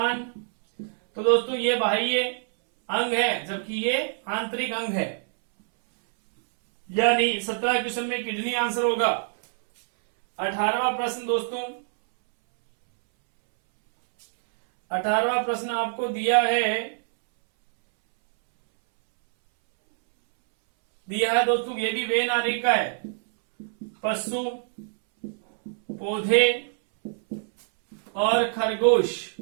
तो दोस्तों ये बाह्य अंग है, जबकि ये आंतरिक अंग है, यानी 17 क्वेश्चन में किडनी आंसर होगा। 18वां प्रश्न दोस्तों, 18वां प्रश्न आपको दिया है दोस्तों, ये भी वे नारी का है। पशु, पौधे और खरगोश।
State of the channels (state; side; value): silent; left; 62 dB below the other